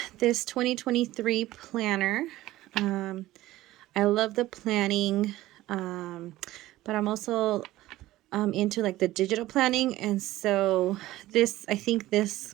this 2023 planner. Um, I love the planning, but I'm also into like the digital planning, and so I think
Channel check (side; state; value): left; quieter; 16.2 dB